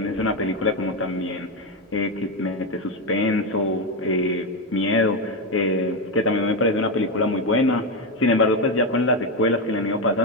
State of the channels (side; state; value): both; normal; correlation 0.10